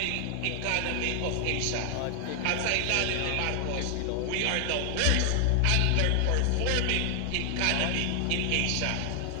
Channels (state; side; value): different; both; correlation 0.00